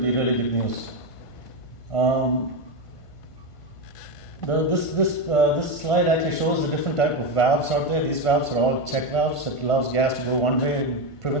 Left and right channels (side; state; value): right; late; 1.5 ms